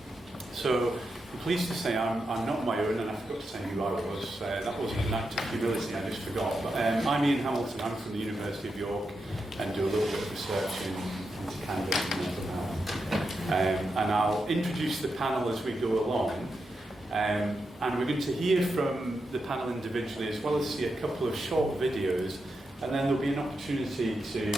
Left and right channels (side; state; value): both; normal; correlation 0.87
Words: So I'm pleased to say I'm not my own, and I forgot to say who I was. That wasn't an act of humility, I just forgot. But I'm Ian Hamilton, I'm from the University of York, and do a little bit of research into cannabis and mental health. And I'll introduce the panel as we go along. And we're going to hear from the panel individually, as well as see a couple of short videos. And then there'll be an opportunity